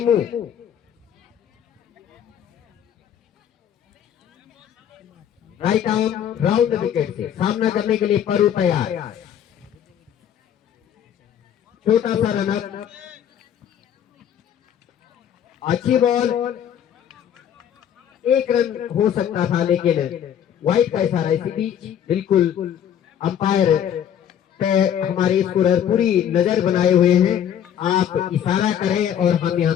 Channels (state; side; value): quieter; right; 9.5 dB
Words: right arm round wicket से सामना करने के लिए परू तैयार। छोटा सा रनअप, अच्छी बॉल, एक रन हो सकता था लेकिन वाइड का इशारा इसी बीच। बिल्कुल अंपायर पे हमारे स्कोरर पूरी नजर बनाए हुए हैं, आप इशारा करें और हम